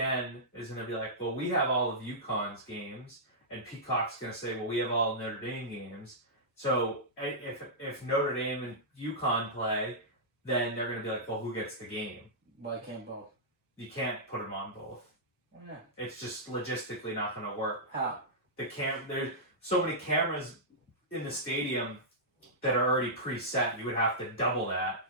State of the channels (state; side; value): normal; both; correlation -0.13